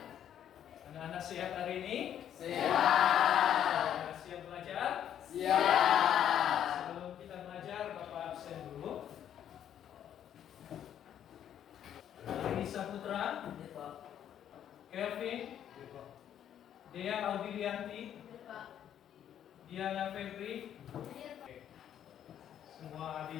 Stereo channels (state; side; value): quieter; right; 10.0 dB